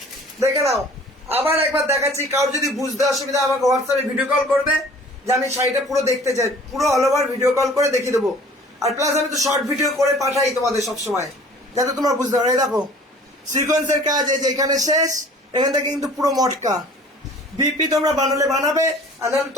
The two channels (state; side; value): normal; both; correlation 0.49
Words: দেখে নাও। আবার একবার দেখাচ্ছি, কারোর যদি বুঝতে অসুবিধা আমাকে হোয়াটসঅ্যাপে ভিডিও কল করবে, যে আমি শাড়িটা পুরো দেখতে চাই, পুরো অল ওভার ভিডিও কল করে দেখিয়ে দেবো। আর প্লাস আমি তো শর্ট ভিডিও করে পাঠাই তোমাদের সবসময়, যাতে তোমরা বুঝতে পারো। এই দেখো সিকোয়েন্সের কাজ, এই যে এখানে শেষ, এখান থেকে কিন্তু পুরো মটকা। বিপি তোমরা বানালে বানাবে, আর নাহলে